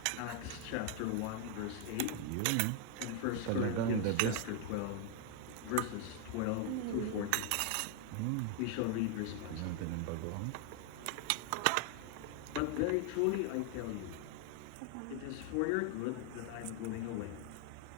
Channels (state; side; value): different; both; correlation 0.00